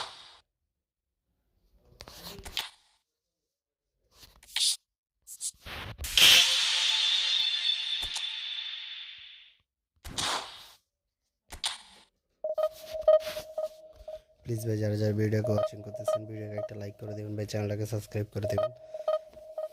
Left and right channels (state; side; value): identical; both; correlation 1.00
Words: প্লিজ ভাই যারা যারা ভিডিওকে ওয়াচিং করতেছেন ভিডিওকে একটা লাইক করে দিবেন ভাই, চ্যানেলটাকে সাবস্ক্রাইব করে দিবেন।